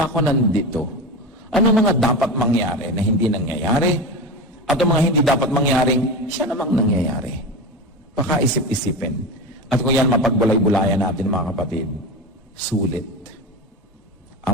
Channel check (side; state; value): both; normal; correlation 0.23